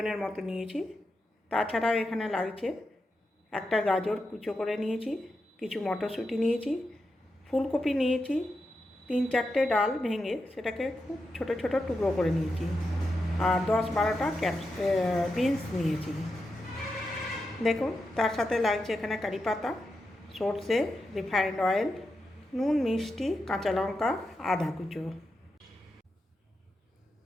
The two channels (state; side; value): normal; both; correlation 0.88